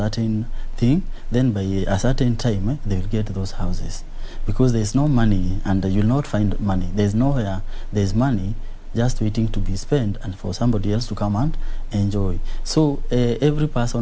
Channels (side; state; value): both; identical; correlation 1.00